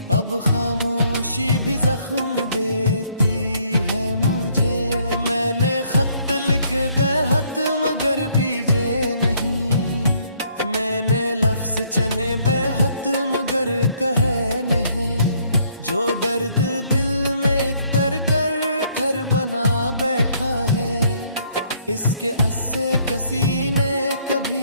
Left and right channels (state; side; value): inverted; both; correlation -0.66